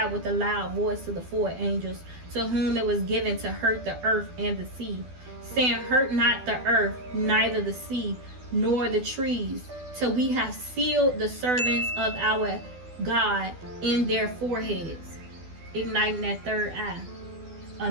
with a loud voice to the 4 angels, to whom it was given to hurt the earth and the sea, saying, Hurt not the earth, neither the sea, nor the trees, till we have sealed the servants of our God in their foreheads," igniting that third eye. A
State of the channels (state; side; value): late; left; 12 ms